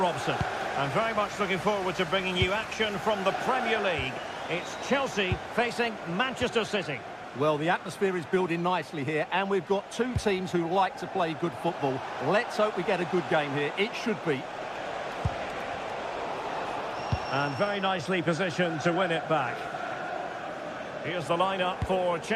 I'm very much looking forward to bringing you action from the Premier League. It's Chelsea facing Manchester City. Well, the atmosphere is building nicely here, and we've got two teams who like to play good football. Let's hope we get a good game here. It should be. And very nicely positioned to win it back. Here's the lineup for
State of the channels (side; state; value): both; identical; correlation 1.00